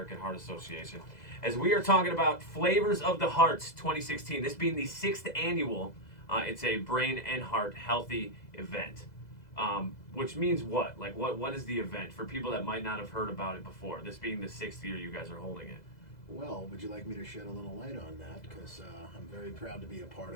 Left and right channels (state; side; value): late; right; 2.0 ms